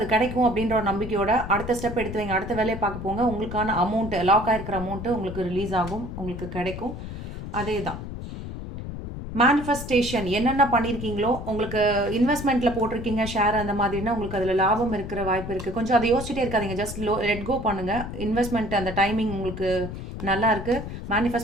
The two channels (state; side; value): noise; left; rumble, 8 dB below the sound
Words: கிடைக்கும் அப்படின்ற ஒரு நம்பிக்கையோட அடுத்த ஸ்டெப் எடுத்து வைங்க, அடுத்த வேலையை பார்க்க போங்க. உங்களுக்கான அமௌண்ட்டு, லாக் ஆகிருக்கிற அமௌண்ட்டு உங்களுக்கு ரிலீஸ் ஆகும், உங்களுக்கு கிடைக்கும். அதே தான் மேனிஃபெஸ்டேஷன். என்னென்ன பண்ணியிருக்கீங்களோ, உங்களுக்கு இன்வெஸ்ட்மெண்ட்டில் போட்டிருக்கீங்க ஷேர் அந்த மாதிரினா உங்களுக்கு அதில் லாபம் இருக்கிற வாய்ப்பு இருக்குது. கொஞ்சம் அதை யோசிச்சுட்டே இருக்காதீங்க, ஜஸ்ட் லெட் கோ பண்ணுங்கள். இன்வெஸ்ட்மெண்ட் அந்த டைமிங் உங்களுக்கு நல்லா இருக்குது,